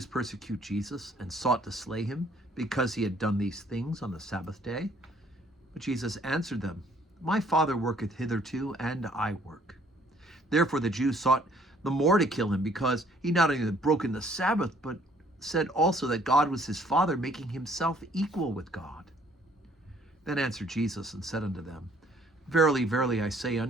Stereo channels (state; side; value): normal; both; correlation 0.61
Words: persecute Jesus and sought to slay him because he had done these things on the Sabbath day. But Jesus answered them, My Father worketh hitherto, and I work. Therefore the Jews sought the more to kill him, because he not only had broken the Sabbath, but said also that God was his Father, making himself equal with God. Then answered Jesus and said unto them, Verily, verily, I say